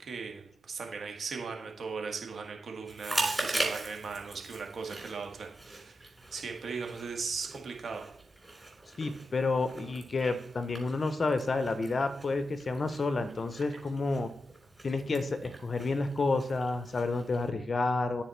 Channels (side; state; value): both; normal; correlation 0.89